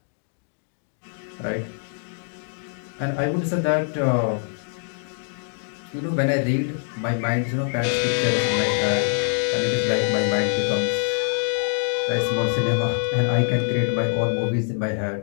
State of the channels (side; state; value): right; silent; digital silence